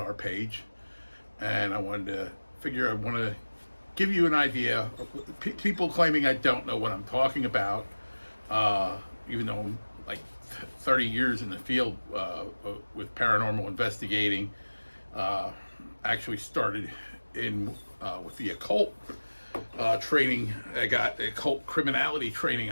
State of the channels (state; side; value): inverted; both; correlation -1.00